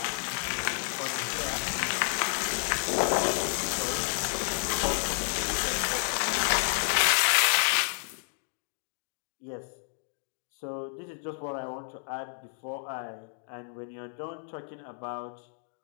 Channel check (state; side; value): silent; right; digital silence